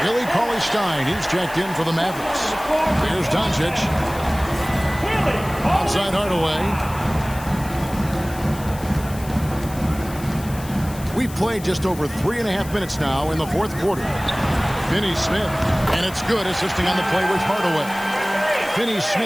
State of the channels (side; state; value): left; noise; hiss, 16 dB below the sound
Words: Billy Cauley-Stein, he's checked in for the Mavericks. Here's Doncic. Outside Hardaway. We've played just over 3.5 minutes now in the fourth quarter. Finney Smith, and it's good, assisting on the play with Hardaway. Finney